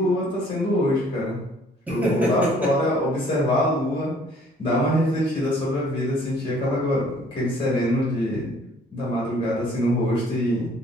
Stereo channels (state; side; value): normal; both; correlation 0.58